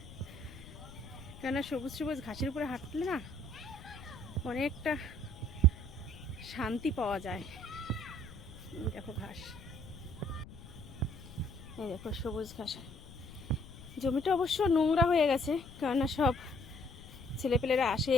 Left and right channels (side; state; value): left; noise; rumble, 16 dB below the sound